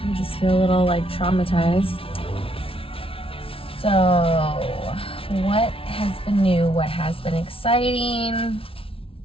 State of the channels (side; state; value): right; late; 0.26 ms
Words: I just feel a little like traumatized. So, what has been new? What has been exciting?